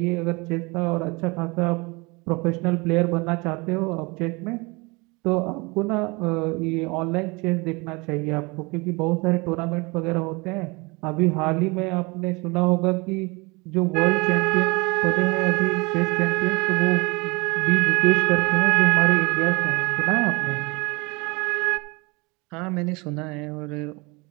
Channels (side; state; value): left; quieter; 26.7 dB